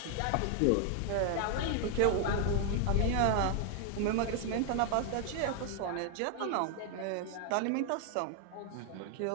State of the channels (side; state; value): both; different; correlation 0.00